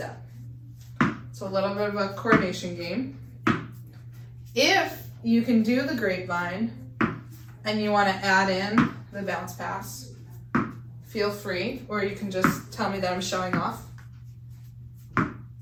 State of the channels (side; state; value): both; identical; correlation 1.00